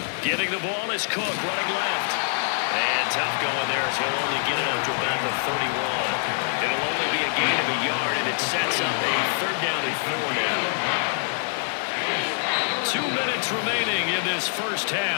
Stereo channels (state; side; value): silent; right; 62 dB below the other